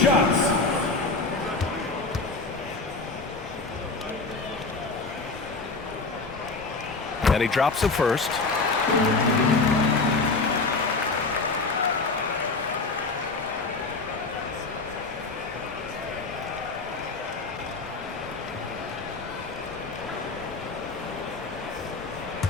And he drops the first.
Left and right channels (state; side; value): quieter; right; 3.8 dB